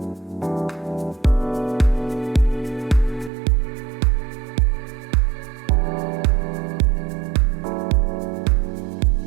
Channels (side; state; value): left; drops out; at 3.3 s